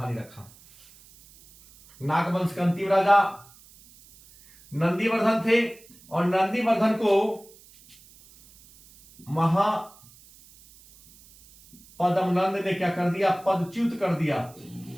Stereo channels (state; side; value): noise; right; hiss, 25 dB below the sound